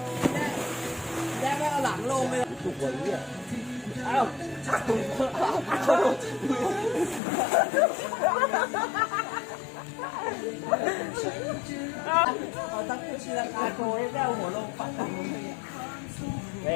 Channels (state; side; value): drops out; right; at 7.2 s